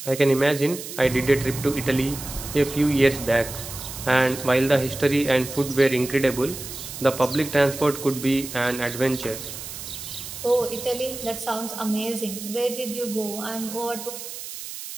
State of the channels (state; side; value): noise; right; hiss, 10 dB below the sound